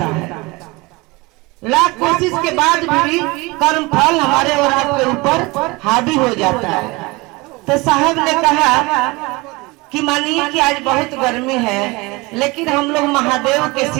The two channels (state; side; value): quieter; left; 24.2 dB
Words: है। लाख कोशिश के बाद भी कर्म फल हमारे और आपके ऊपर हावी हो जाता है। तो साहब ने कहा कि मानिए कि आज बहुत गर्मी है, लेकिन हम लोग महादेव के